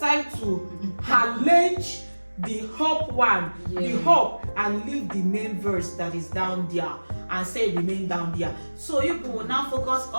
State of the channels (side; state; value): both; inverted; correlation -1.00